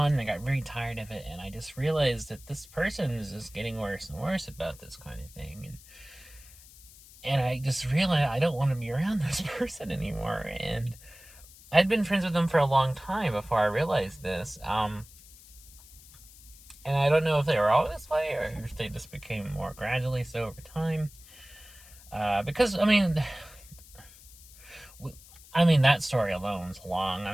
and I got very tired of it, and I just realized that this person is just getting worse and worse about this kind of thing, and I just realized I don't want to be around this person anymore. And I'd been friends with them for a long time before I realized this, and I don't know if they were all this way or if they just became more gradually so over time, because that story alone is long.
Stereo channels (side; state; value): left; noise; hiss, 21 dB below the sound